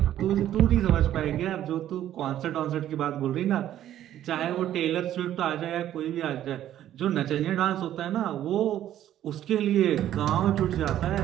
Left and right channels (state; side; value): quieter; left; 11.9 dB